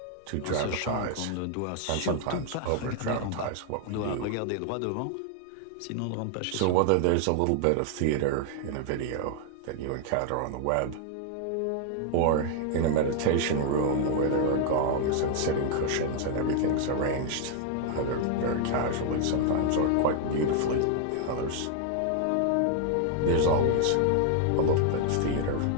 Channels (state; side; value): different; both; correlation 0.00